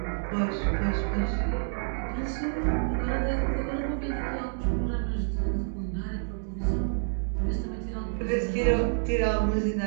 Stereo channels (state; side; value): silent; left; digital silence